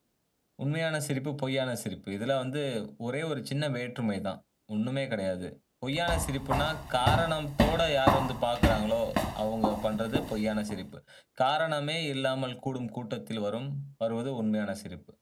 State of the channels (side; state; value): both; identical; correlation 1.00